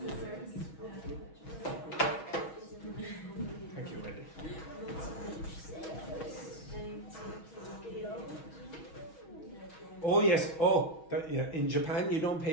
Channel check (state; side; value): late; right; 6.2 ms